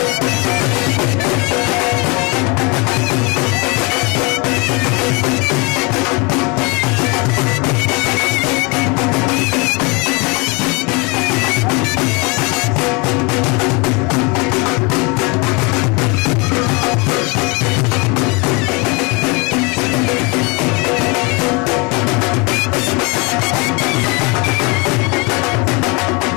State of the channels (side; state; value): right; quieter; 29.1 dB